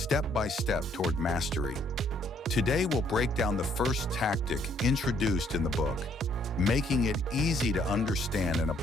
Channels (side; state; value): both; normal; correlation 0.67